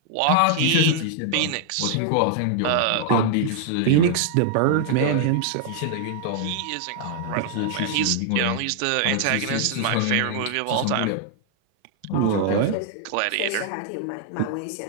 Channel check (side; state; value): both; different; correlation -0.01